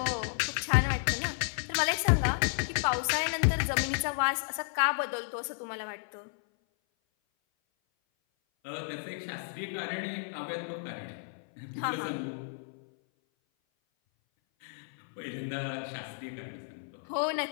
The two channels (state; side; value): silent; right; 56 dB below the other